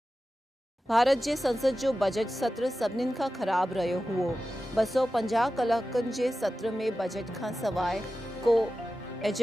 भारत जे संसद जो बजट सत्र सभिनीनि खां ख़राब रहियो हुओ। 250 कलाकनि जे सत्र में बजट खां सवाइ को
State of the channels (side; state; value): both; normal; correlation 0.94